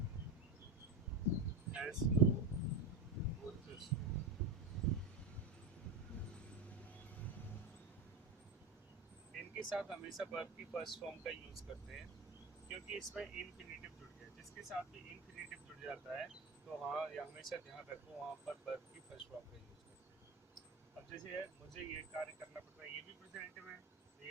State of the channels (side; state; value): left; quieter; 3.2 dB